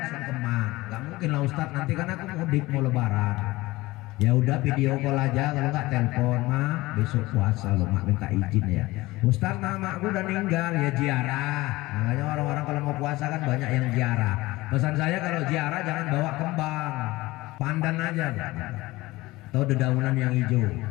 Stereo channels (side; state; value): right; quieter; 19.7 dB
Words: sungkeman. Nggak mungkin lah Ustadz, nanti kan aku mudik mau lebaran. Ya udah video call aja, kalau nggak telepon mah besok puasa lo mak minta izin ya. Ustadz mamaku udah meninggal, ya ziarah. Makanya orang-orang kalau mau puasa kan banyak yang ziarah. Pesan saya kalau ziarah jangan bawa kembang, pandan aja atau dedaunan yang hijau.